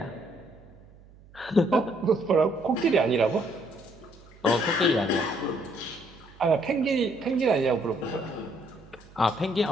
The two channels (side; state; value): right; noise; hum, 24 dB below the sound